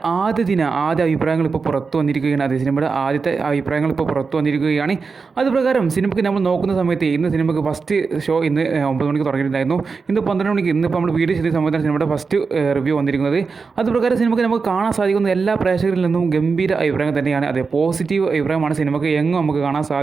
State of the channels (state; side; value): quieter; left; 4.8 dB